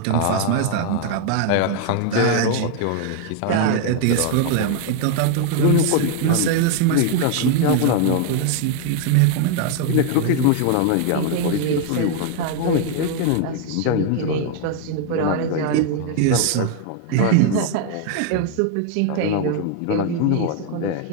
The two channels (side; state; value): both; different; correlation 0.01